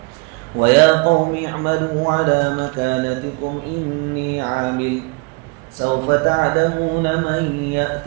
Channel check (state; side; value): quieter; left; 30.7 dB